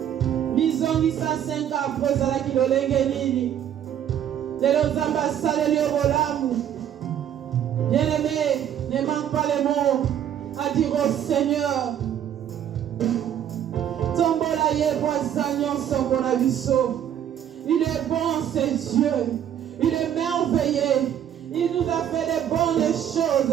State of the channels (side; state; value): left; quieter; 9.9 dB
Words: Bizongisa 5 après ezalaki lolenge nini. Lelo Nzambe asaleli yo bolamu. Bien-aimé, ne manque pas les mots à dire au Seigneur. Tombola ye boisa nyonso mpona biso. Il est bon, c'est Dieu. Il est merveilleux. Il nous a fait des bonnes